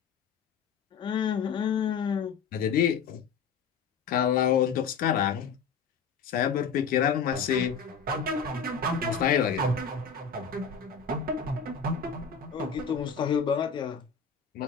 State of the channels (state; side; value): quieter; right; 6.1 dB